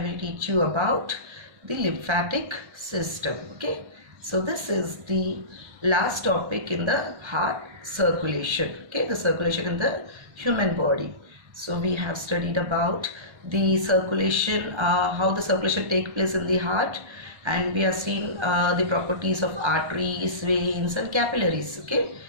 teach you about the lymphatic system. Okay, so this is the last topic in the heart circulation. Okay, the circulation in the human body. So we have studied about the circulation, how the circulation take place in the heart, and we have seen the properties of arteries, veins and capillaries. Okay,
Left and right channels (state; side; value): late; left; 1.3 ms